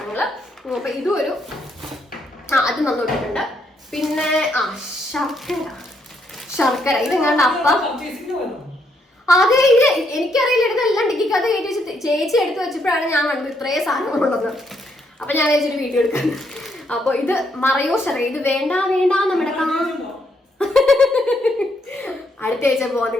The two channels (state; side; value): normal; both; correlation 0.75